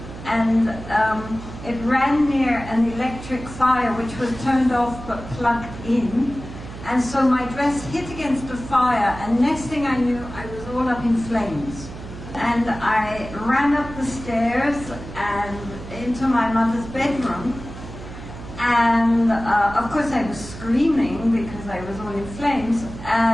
and it ran near an electric fire which was turned off but plugged in. And so my dress hit against the fire, and next thing I knew, I was all up in flames. And I ran up the stairs and into my mother's bedroom. And of course I was screaming because I was all in flames.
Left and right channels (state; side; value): noise; right; hum, 12 dB below the sound